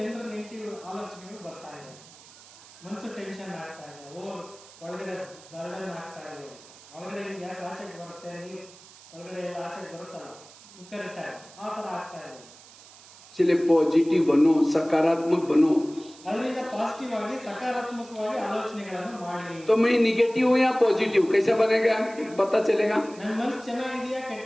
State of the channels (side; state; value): right; noise; hiss, 21 dB below the sound